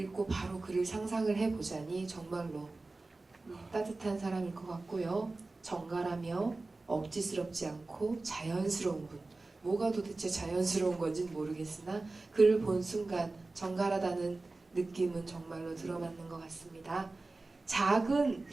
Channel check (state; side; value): quieter; left; 3.3 dB